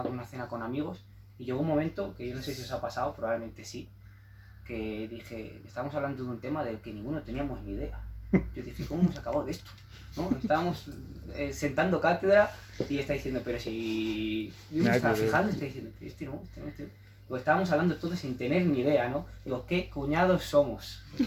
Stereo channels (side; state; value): both; identical; correlation 1.00